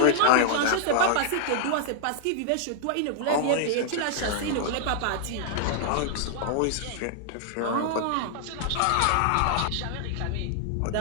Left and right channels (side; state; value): both; different; correlation -0.01